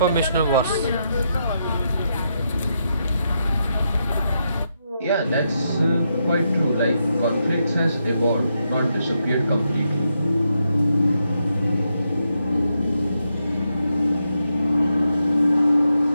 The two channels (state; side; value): inverted; both; correlation -0.82